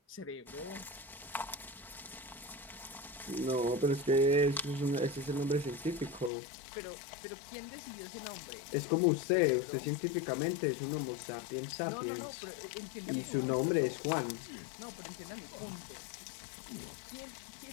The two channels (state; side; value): drops out; right; at 6.3 s